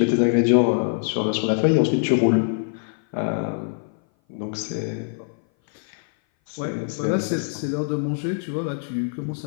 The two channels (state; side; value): silent; right; 58 dB below the other